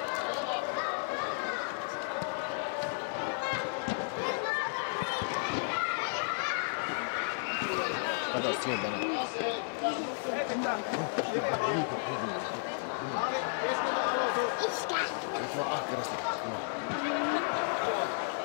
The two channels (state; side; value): silent; right; 56 dB below the other